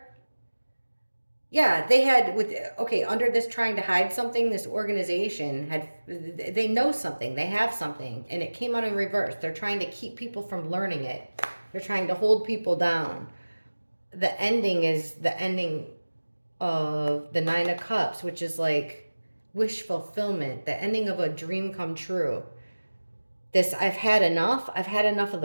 Yeah, they had under this trying to hide something, this organization they know something, they have something, and it came out in reverse. They're trying to keep people from learning it. They're trying to hold people down. The ending is the ending of the 9 of Cups, which is like wish fulfillment, the ending of a dream come true. This, I've had enough. I've had enough of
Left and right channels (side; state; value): both; inverted; correlation -1.00